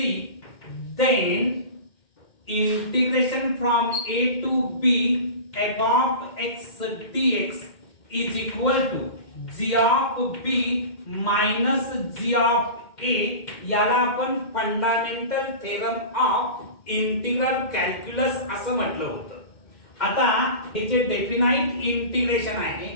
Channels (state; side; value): late; right; 2.1 ms